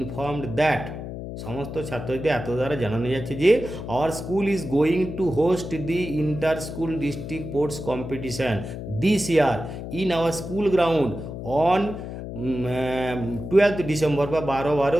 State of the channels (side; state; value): left; noise; hum, 8 dB below the sound